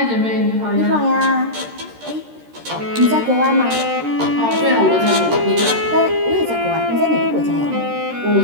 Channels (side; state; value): left; late; 13 ms